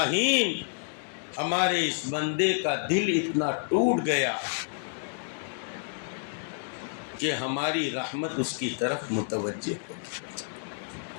ہمارے اس بندے کا دل اتنا ٹوٹ گیا کہ ہماری رحمت اس کی طرف متوجہ ہو گئی.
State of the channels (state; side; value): silent; right; digital silence